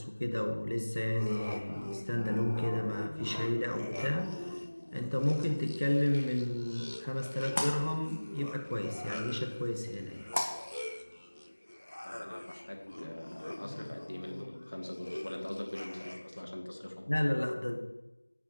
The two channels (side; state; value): both; inverted; correlation -1.00